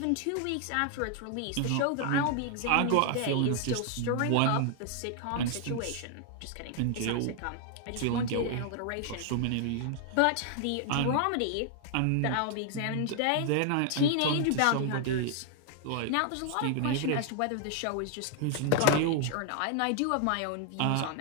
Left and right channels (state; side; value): different; both; correlation 0.00